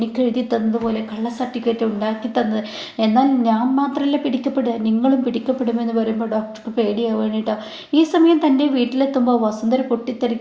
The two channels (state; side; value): identical; both; correlation 1.00